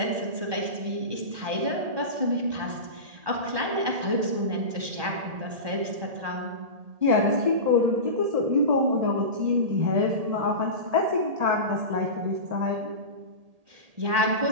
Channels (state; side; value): late; left; 1.8 ms